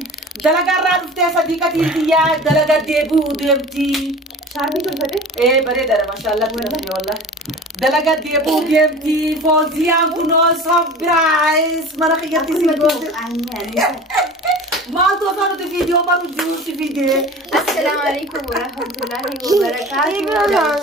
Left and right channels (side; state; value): both; normal; correlation 0.38